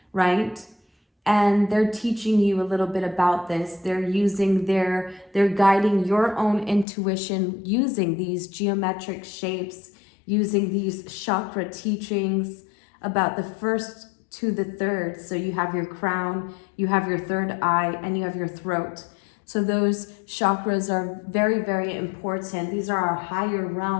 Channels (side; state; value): right; drops out; at 6.9 s